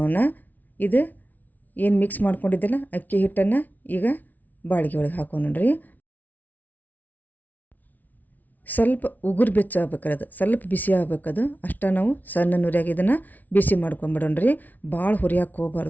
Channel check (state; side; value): late; right; 0.078 ms